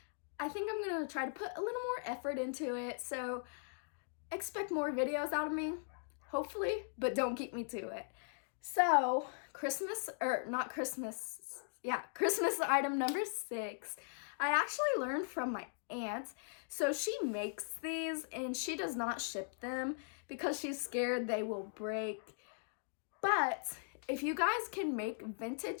I think I'm going to try to put a little more effort into it. So expect more videos out of me, hopefully, but don't keep me to it. So Christmas item number 6. I actually learned from my aunt. So she makes these and she does not ship them because she's scared they will break. But if you guys can make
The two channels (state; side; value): silent; right; digital silence